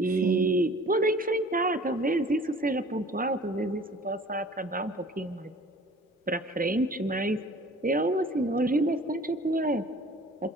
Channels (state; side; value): normal; both; correlation 0.48